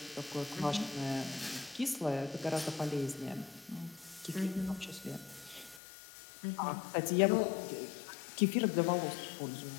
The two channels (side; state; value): right; drops out; at 5.8 s